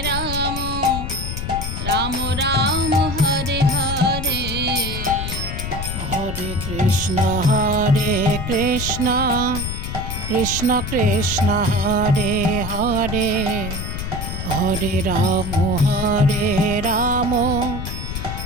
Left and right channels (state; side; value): noise; left; rumble, 5 dB below the sound